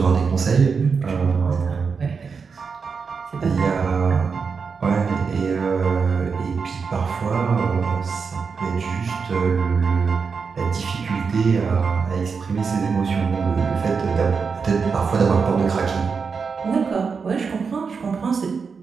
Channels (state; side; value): quieter; left; 5.4 dB